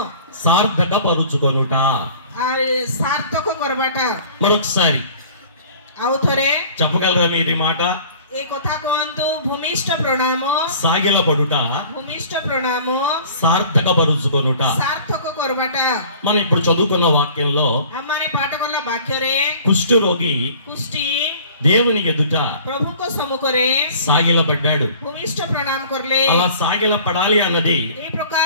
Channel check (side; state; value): both; inverted; correlation -0.48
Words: సార్థక పరుచుకొనుట, సార్థକ କରବାଟା. మరొకసారి ଆଉ ଥରେ చెప్పగలరా మీరు ఈ మాట? ఏ କଥା କୁହନ୍ତୁ. ଭୂମିଷ୍ଠ ପ୍ରଣାମ, సాగిల పడుట, ଭୂମିଷ୍ଠ ପ୍ରଣାମ, సార్థక పరుచుకొనుట. సార్థକ କରବାଟା. మనం ఇప్పుడు చదువుకున్న వాక్యంలో ଆମମାନେ ପାଠ କଲା ବାକ୍ୟରେ కుష్ఠరోగి କୁଷ୍ଠି దేవుని ఎదుట ప్రభుଙ୍କ ସମ୍ମୁଖରେ సాగిలపడ్డాడు. ଭୂମିଷ୍ଠ ପ୍ରଣାମ କରିଲେ. అలా సాగిల పడాలి అన్నది ఏ ప్రକାର